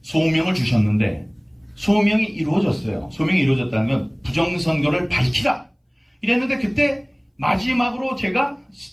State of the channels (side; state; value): both; identical; correlation 1.00